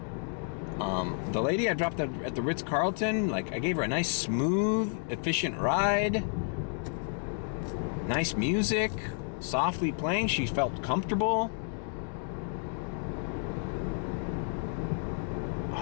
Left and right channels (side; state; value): right; silent; 57 dB below the other